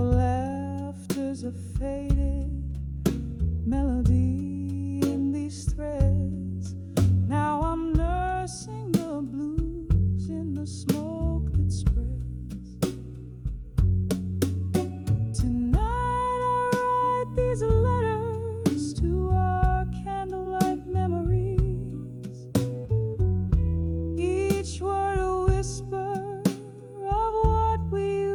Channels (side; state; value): both; identical; correlation 1.00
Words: laughter's a faded melody in these threads. Now I'm nursing the blues in the smoke that spreads. Tonight I write these letters to our candlelight memories. Each word a whisper of what we